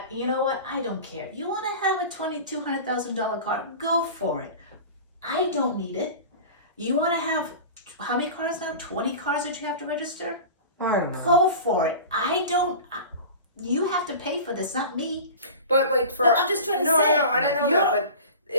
You know what? I don't care. You want to have a $200,000 car? Go for it. I don't need it. You want to have how many cars now? 20 cars that you have to register? I don't know. Go for it. I don't. You have to pay for this, not me. But like for No, I'm just trying to no, say. no, I don't know You're- that. But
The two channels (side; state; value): both; inverted; correlation -0.35